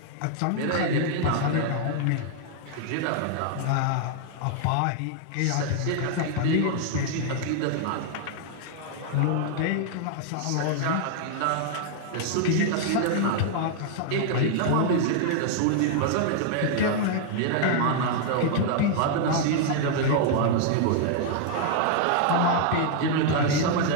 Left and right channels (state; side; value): different; both; correlation 0.00